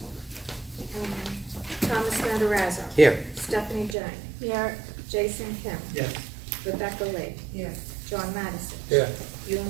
Matarazzo. Here. Stephanie Jane. Here. Jason Kim. Yes. Rebecca Lee. Here. John Madison. Here.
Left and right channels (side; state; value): left; drops out; at 4.0 s